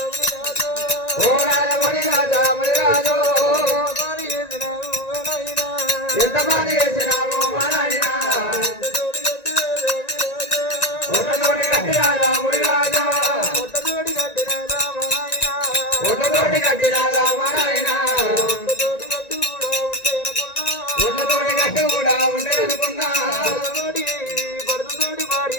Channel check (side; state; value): right; late; 1.9 ms